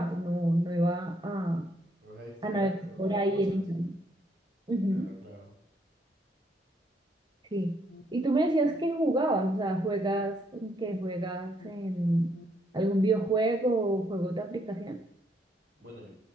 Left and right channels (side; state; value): both; normal; correlation 0.72